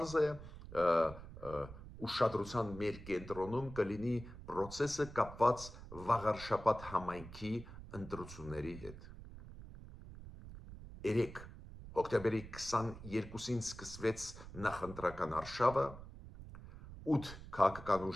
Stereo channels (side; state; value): right; noise; rumble, 14 dB below the sound